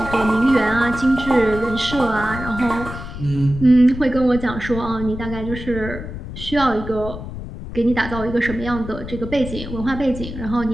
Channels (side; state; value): left; noise; rumble, 9 dB below the sound